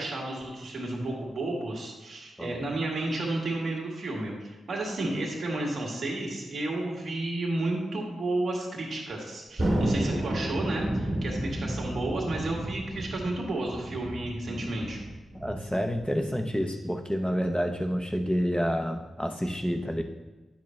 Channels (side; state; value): both; normal; correlation 0.92